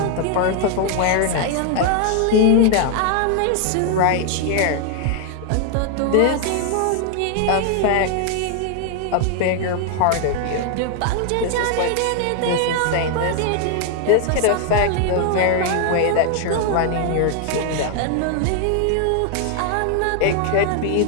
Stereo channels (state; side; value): different; both; correlation 0.00